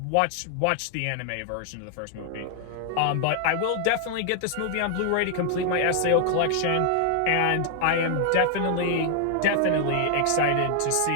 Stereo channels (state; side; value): different; both; correlation 0.00